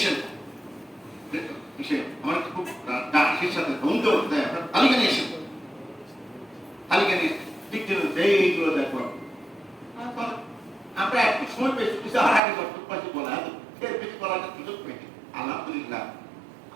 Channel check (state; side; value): drops out; left; at 12.4 s